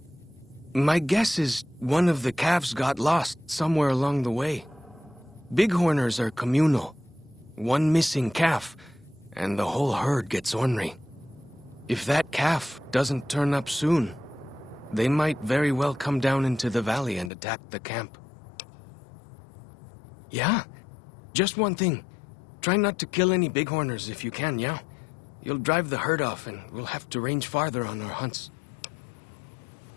My guess is one of the calves got lost somewhere along the way. Bighorners are communal. One missing calf, and the whole herd gets ornery. If that calf doesn't turn up soon, they might very well come down into the valley and attack the camp. Yeah. Just one thing. Try not to kill any bighorners if you can, yeah? You'll drive the herd off and we'll have to range farther on our hunts.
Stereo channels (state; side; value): drops out; right; at 17.3 s